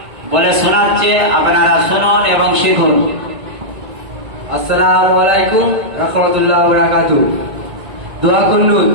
বলে শোনাচ্ছে, আপনারা শুনুন এবং শিখুন। আসসালামু আলাইকুম রাহমাতুল্লাহি ওয়া বারাকাতুহু। দোয়া কুনুত।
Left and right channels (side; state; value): left; late; 1.5 ms